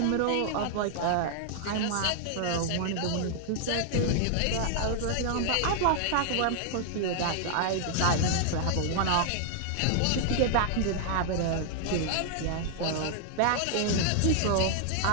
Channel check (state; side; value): different; both; correlation 0.00